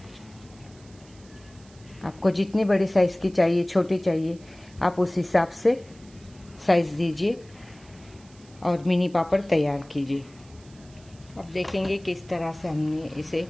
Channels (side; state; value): right; noise; hiss, 26 dB below the sound